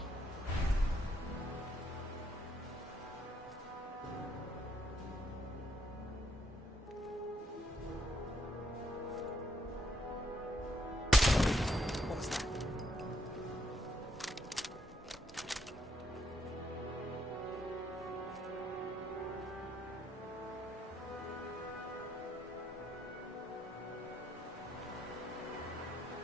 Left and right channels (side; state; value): both; normal; correlation 0.73